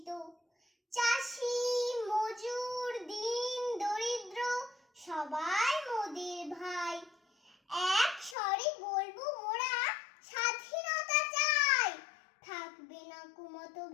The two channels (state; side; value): drops out; right; at 8.3 s